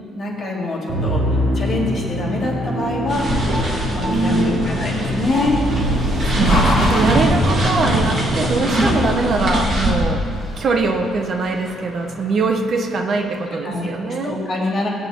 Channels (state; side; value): normal; both; correlation 0.70